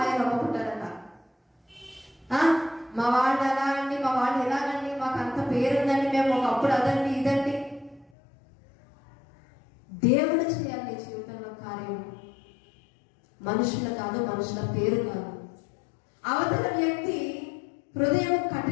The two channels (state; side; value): drops out; right; at 8.1 s